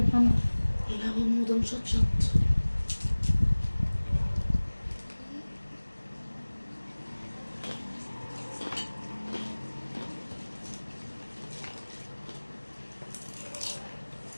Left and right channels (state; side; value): inverted; both; correlation -1.00